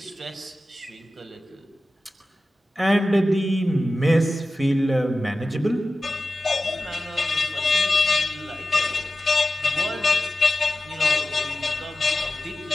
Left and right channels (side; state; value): both; normal; correlation 0.95